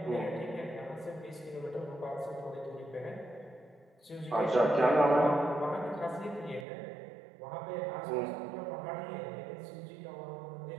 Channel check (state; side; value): drops out; left; at 6.7 s